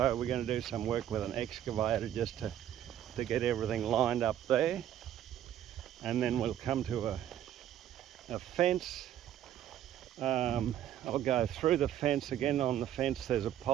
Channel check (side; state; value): left; quieter; 11.3 dB